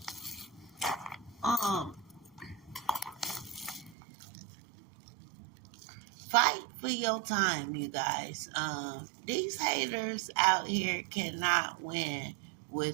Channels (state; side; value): drops out; left; at 4.0 s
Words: Um, Fight for your time, you guys. These haters out here cannot win